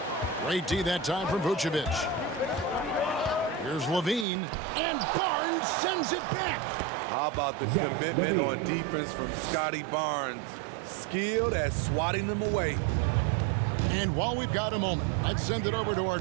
Great D that time from Vucevic. Here's Levine, and Barnes sends it back. How about the commitment on defense from Scotty Barnes? Skilled at swatting them away. And while we've got a moment, let's send it over to our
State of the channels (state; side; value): drops out; left; at 4.2 s